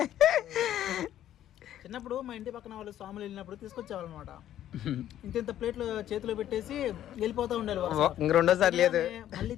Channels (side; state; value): right; quieter; 11.8 dB